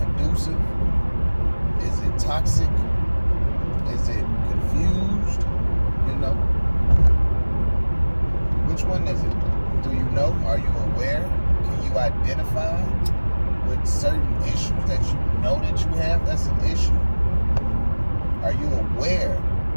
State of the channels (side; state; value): both; inverted; correlation -1.00